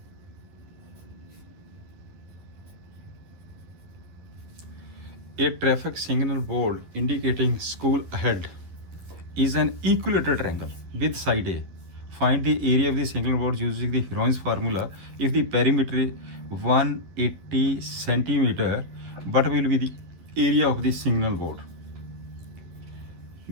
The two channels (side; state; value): left; late; 11 ms